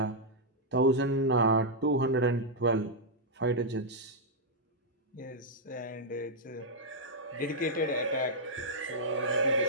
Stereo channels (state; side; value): normal; both; correlation -0.07